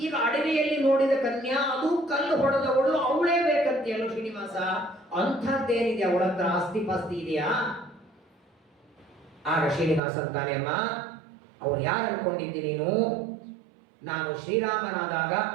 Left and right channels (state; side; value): drops out; left; at 10.0 s